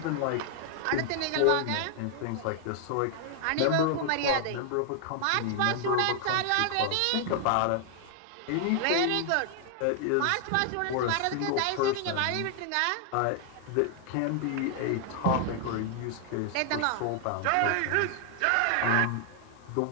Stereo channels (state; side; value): different; both; correlation 0.00